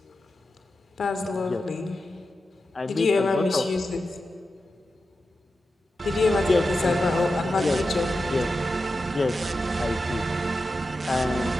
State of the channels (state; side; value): normal; both; correlation 0.91